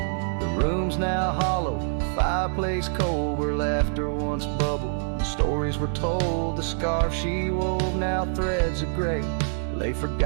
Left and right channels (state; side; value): silent; left; digital silence